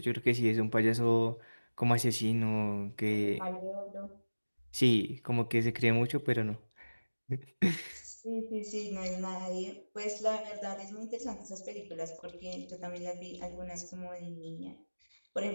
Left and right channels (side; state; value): both; inverted; correlation -1.00